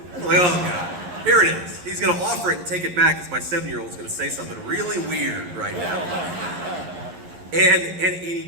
I'm like, oh, God. Here it is. He's going to offer it and take it back because my 7-year-old is going to say something really weird right now. And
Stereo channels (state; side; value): late; left; 11 ms